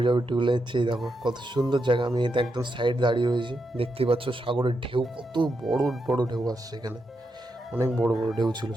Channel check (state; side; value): normal; both; correlation 0.84